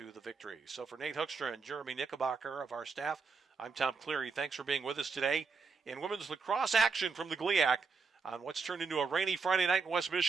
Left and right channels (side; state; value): left; quieter; 5.0 dB